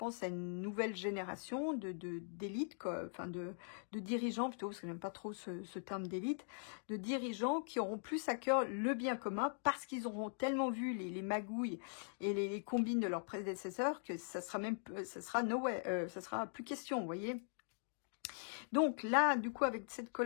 à une nouvelle génération d'élite, enfin de dirigeants plutôt, parce que j'aime pas trop ce terme d'élite, de dirigeants qui auront plus à cœur le bien commun parce qu'ils auront tellement vu les magouilles et les combines de leurs prédécesseurs que ça sera plus question, vous voyez. Donc là, du coup, avec cette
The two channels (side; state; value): right; silent; digital silence